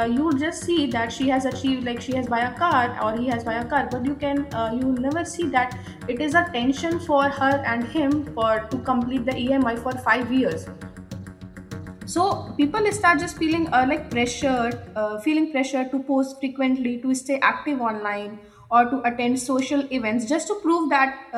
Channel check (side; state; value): both; identical; correlation 1.00